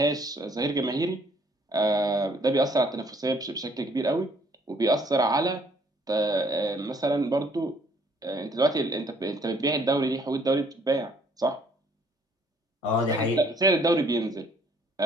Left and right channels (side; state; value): both; normal; correlation 0.62